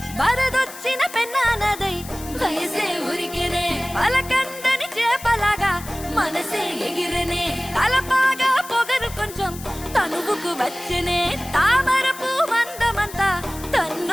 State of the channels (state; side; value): noise; left; hiss, 14 dB below the sound